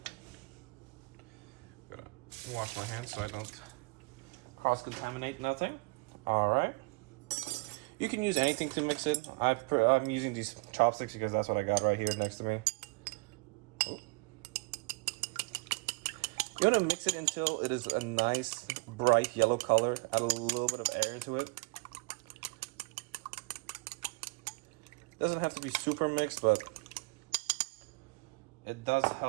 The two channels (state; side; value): quieter; left; 28.0 dB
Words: going to wash my hands so I don't cross-contaminate nothing. All right. You can use anything to mix it. I'm using these chopsticks because that's what I got right here next to me. You want to mix it until it is a nice bright yellow color. Add a little bit of air into it. Doesn't have to be super mixed, but it does